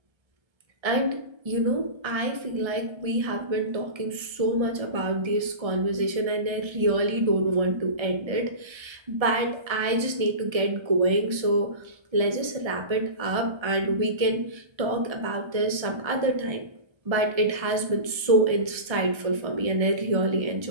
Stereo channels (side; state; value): left; late; 1.3 ms